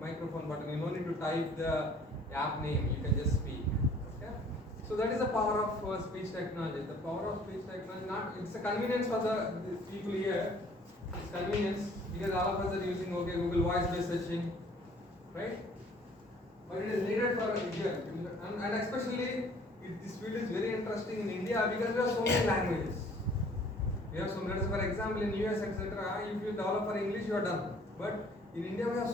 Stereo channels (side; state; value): both; normal; correlation 0.55